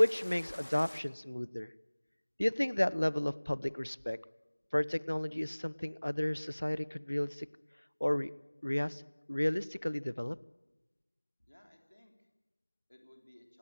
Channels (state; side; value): inverted; both; correlation -1.00